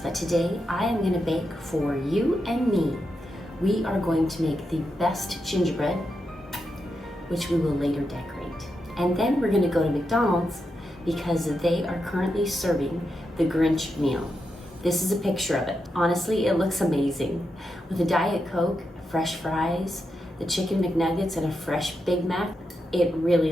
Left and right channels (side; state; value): both; normal; correlation 0.86